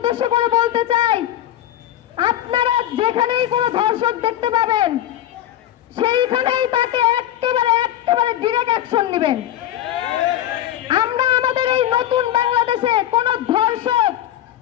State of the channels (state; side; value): quieter; right; 12.5 dB